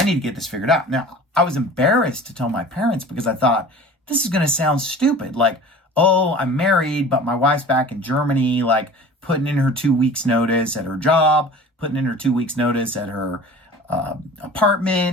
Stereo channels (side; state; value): both; normal; correlation 0.42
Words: need to get this figured out. Now, I was embarrassed to tell my parents, because I thought, this is going to sound stupid. Like, oh, I'm married, but my wife's back in Germany, like putting in her 2 weeks notice at her job, putting in her 2 weeks notice at her